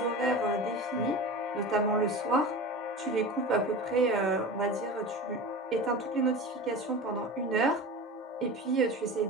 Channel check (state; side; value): normal; both; correlation 0.31